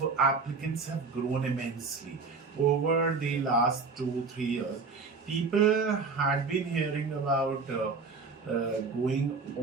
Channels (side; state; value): left; quieter; 4.5 dB